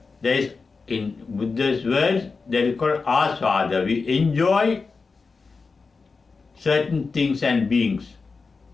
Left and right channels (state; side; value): quieter; right; 4.5 dB